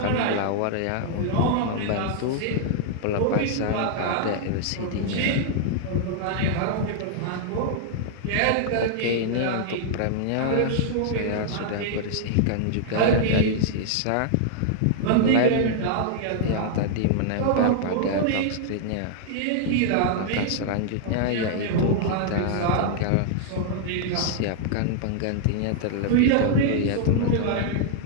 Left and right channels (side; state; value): both; different; correlation -0.01